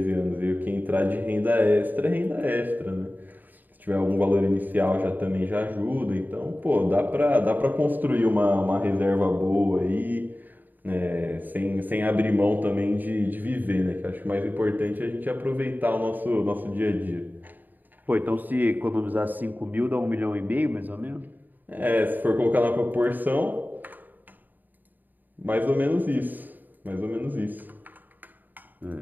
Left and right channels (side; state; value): left; late; 0.088 ms